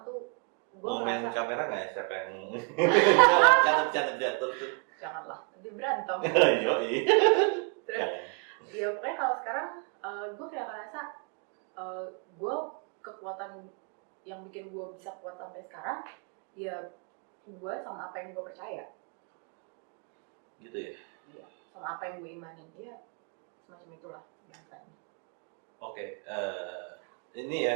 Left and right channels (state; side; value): quieter; left; 39.7 dB